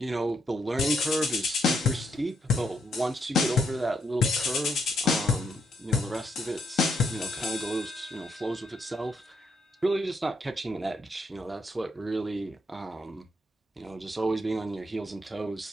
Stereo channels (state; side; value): normal; both; correlation 0.76